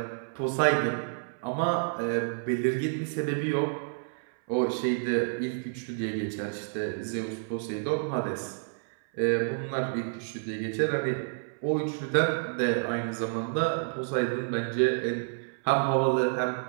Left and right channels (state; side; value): silent; left; 58 dB below the other